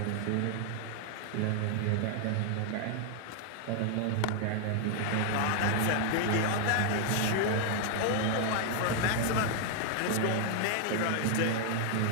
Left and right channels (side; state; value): both; different; correlation 0.00